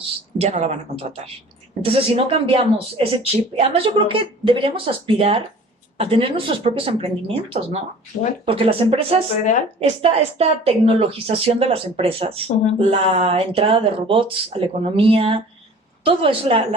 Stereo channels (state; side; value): normal; both; correlation 0.46